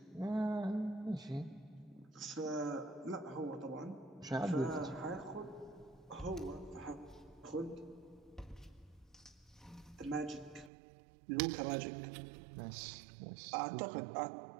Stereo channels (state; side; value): drops out; left; at 10.7 s